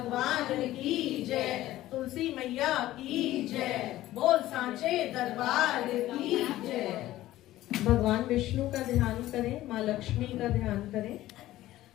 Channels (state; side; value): quieter; right; 15.2 dB